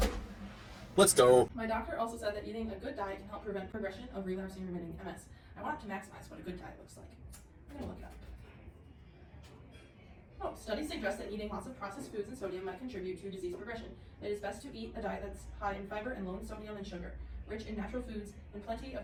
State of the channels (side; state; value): both; identical; correlation 1.00